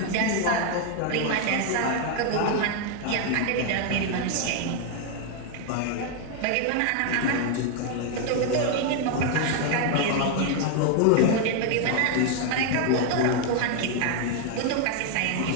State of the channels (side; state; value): both; different; correlation 0.01